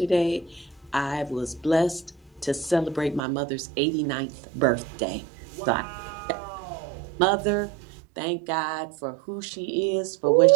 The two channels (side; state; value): left; drops out; at 3.2 s